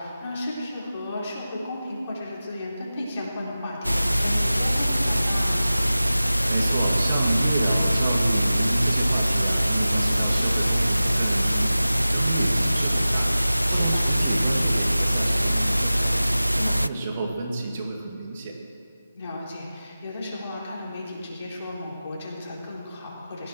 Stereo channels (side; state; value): both; inverted; correlation -0.96